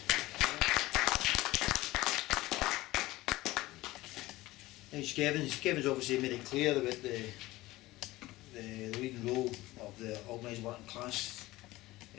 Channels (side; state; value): right; quieter; 18.4 dB